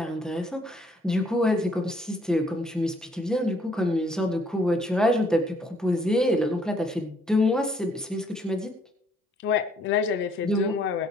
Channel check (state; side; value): normal; both; correlation 0.65